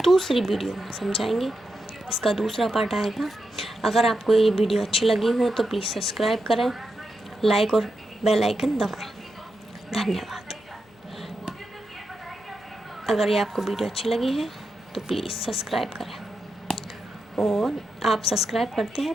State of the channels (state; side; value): normal; both; correlation 0.87